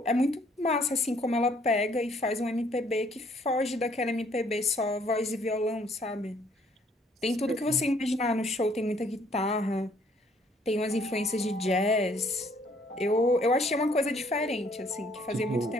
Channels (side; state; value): both; normal; correlation 0.63